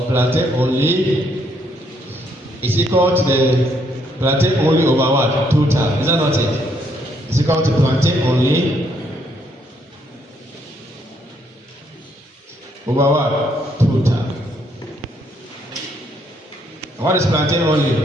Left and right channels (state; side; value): normal; both; correlation 0.71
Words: plantain only is equal to the plantain only over what? Total. Is that not it? It's equal to plantain only over what? Total. And what is plantain only?